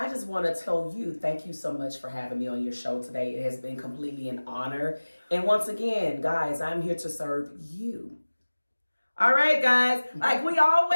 just want to tell you, thank you so much for having me on your show today. It has been completely an honor. And once again, guys, I'm here to serve you. All right, guys. Like we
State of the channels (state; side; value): inverted; both; correlation -1.00